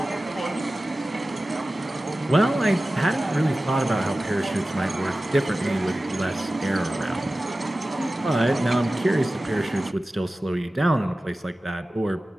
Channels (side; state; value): both; normal; correlation 0.96